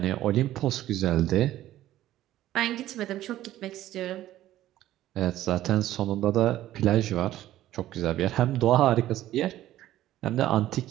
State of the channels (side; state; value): left; quieter; 13.9 dB